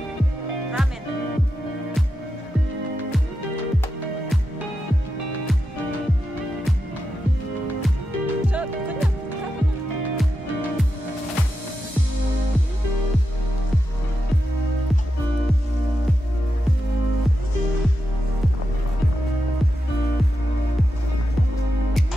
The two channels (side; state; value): both; normal; correlation 0.88